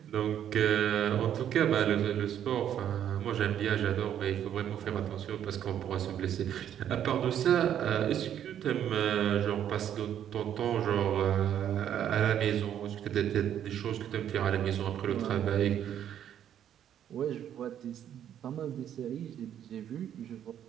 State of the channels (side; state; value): left; quieter; 10.1 dB